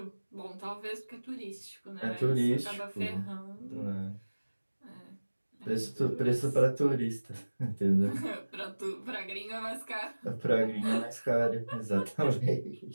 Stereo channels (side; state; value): both; inverted; correlation -1.00